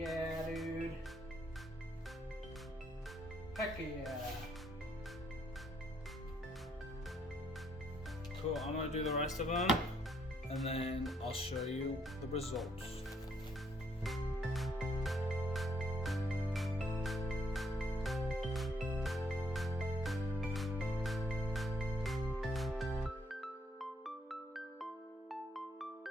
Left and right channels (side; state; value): both; normal; correlation 0.71